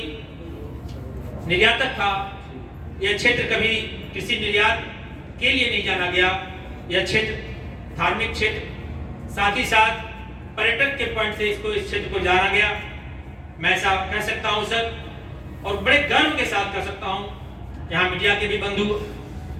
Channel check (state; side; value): identical; both; correlation 1.00